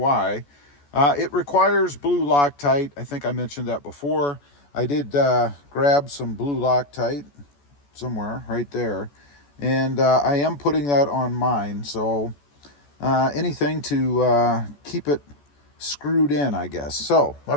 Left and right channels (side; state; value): right; late; 14 ms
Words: it requires blue Loctite. I think I mentioned that before. I did grab some blue Loctite somewhere right there, And I am putting that on mine, so anything to keep it screwed in, I guess. So